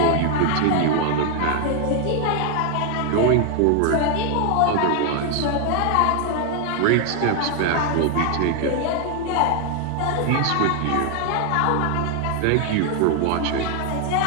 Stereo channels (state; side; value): different; both; correlation 0.00